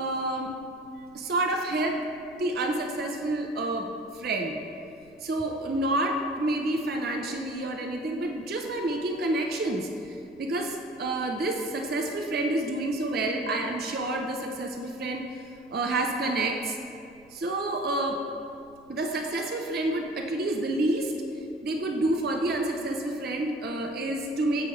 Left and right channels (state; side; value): noise; right; rumble, 28 dB below the sound